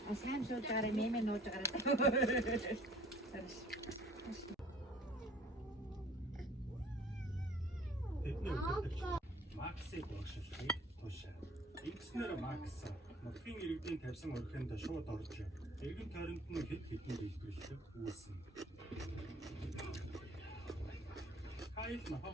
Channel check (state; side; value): normal; both; correlation 0.53